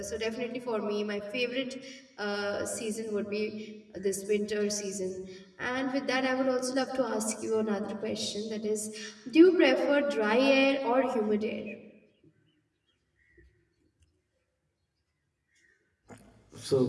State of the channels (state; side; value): identical; both; correlation 1.00